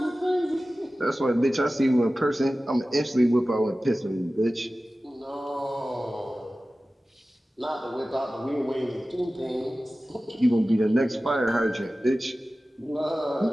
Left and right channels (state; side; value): normal; both; correlation 0.96